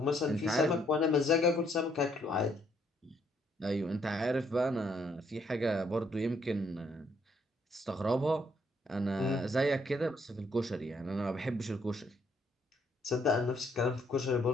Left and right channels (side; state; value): both; normal; correlation 0.70